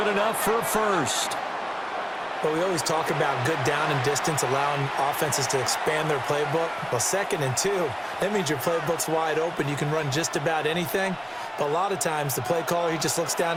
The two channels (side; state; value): both; identical; correlation 1.00